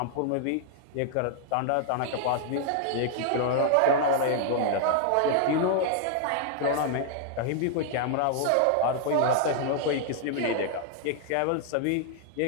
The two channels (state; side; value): different; both; correlation 0.00